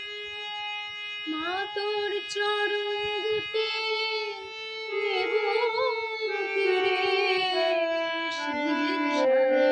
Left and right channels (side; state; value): both; identical; correlation 1.00